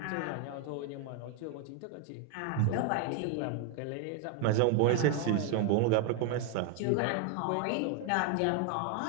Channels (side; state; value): both; different; correlation 0.01